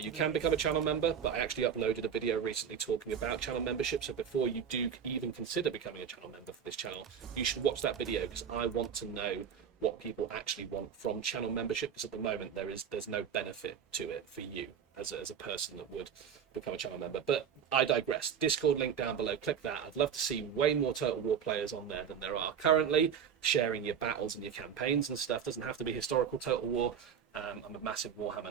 can become a channel member, but I actually uploaded a video recently talking about channel membership. So before you do even consider becoming a channel member for this channel, you should watch that video, because I want to know what people actually want from channel membership, because at the moment there's no benefit to it for you as a person that would become a channel member. But I digress. Discord link down below, click that. I'd love to see way more Total War players on there than there are currently, sharing your battles and your campaigns and stuff. Doesn't have to be historical Total War. I'm a massive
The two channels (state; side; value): quieter; left; 7.8 dB